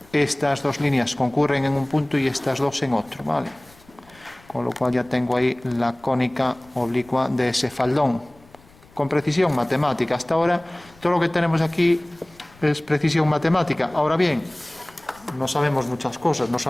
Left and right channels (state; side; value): noise; left; rumble, 27 dB below the sound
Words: estas dos líneas concurren en un punto y estas dos en otro, ¿vale? Con lo cual ya tengo ahí la cónica oblicua de ese faldón. Con precisión matemática. Hasta ahora todo lo que tenemos aquí es precisión matemática. Ahora bien, no sabemos muchas cosas, no